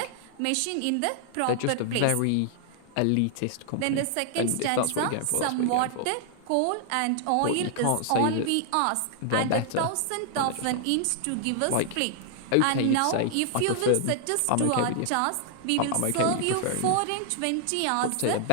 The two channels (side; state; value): both; different; correlation 0.00